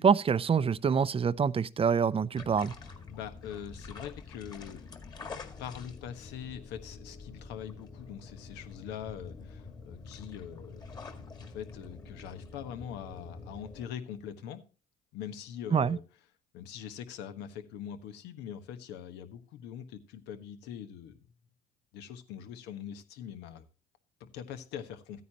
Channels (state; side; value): quieter; left; 4.1 dB